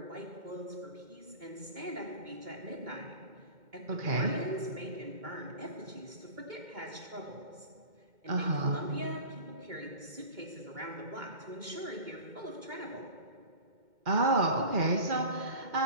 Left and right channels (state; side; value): late; left; 2.2 ms